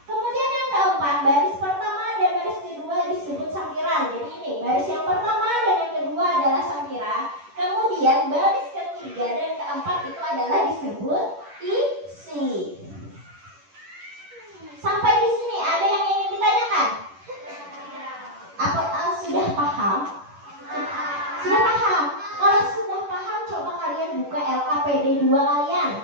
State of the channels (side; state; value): left; late; 10 ms